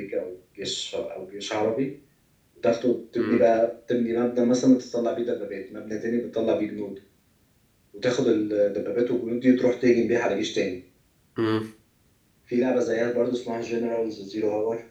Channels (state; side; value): identical; both; correlation 1.00